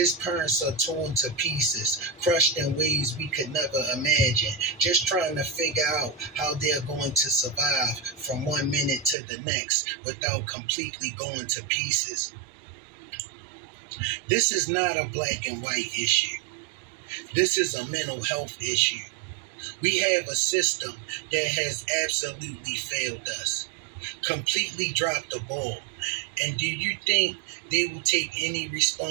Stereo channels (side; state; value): left; drops out; at 9.2 s